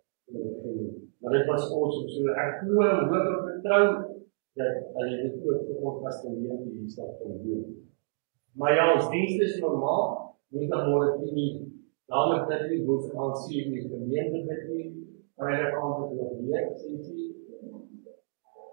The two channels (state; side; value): silent; left; digital silence